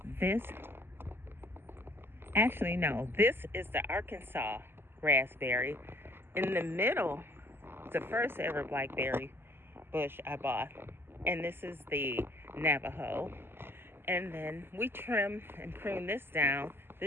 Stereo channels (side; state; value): left; late; 0.11 ms